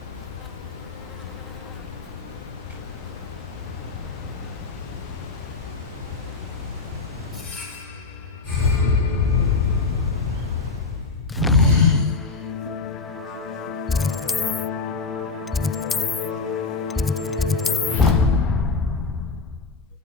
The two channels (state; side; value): quieter; right; 4.2 dB